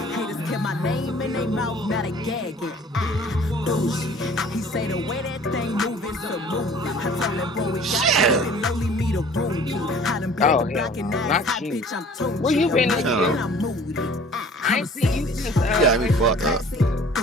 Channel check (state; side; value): normal; both; correlation 0.49